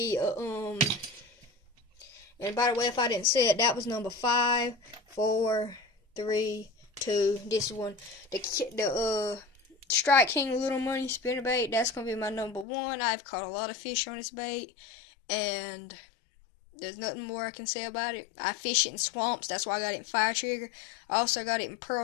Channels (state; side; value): drops out; right; at 12.7 s